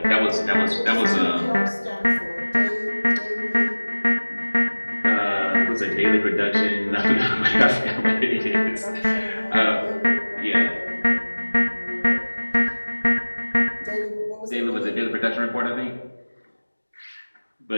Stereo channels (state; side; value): inverted; both; correlation -1.00